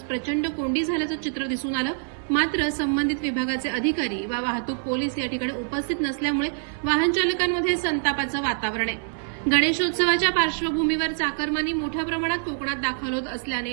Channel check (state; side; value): silent; left; digital silence